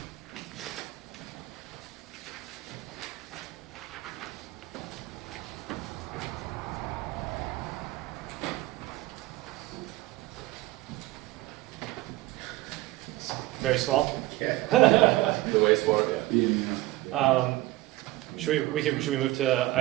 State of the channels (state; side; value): quieter; left; 17.9 dB